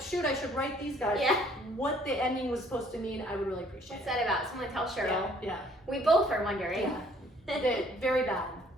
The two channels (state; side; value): normal; both; correlation 0.60